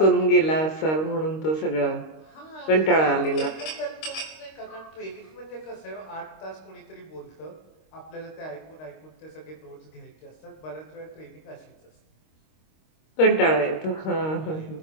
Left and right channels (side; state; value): right; late; 26 ms